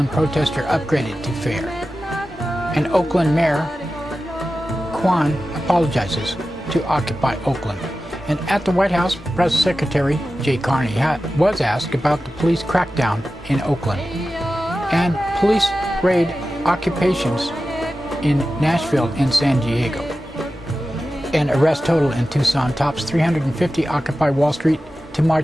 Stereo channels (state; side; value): normal; both; correlation 0.94